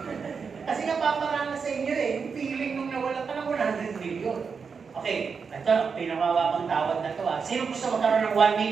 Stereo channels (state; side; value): quieter; left; 5.6 dB